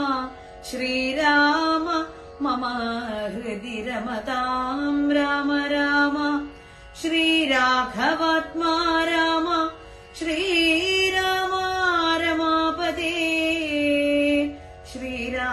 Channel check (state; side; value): identical; both; correlation 1.00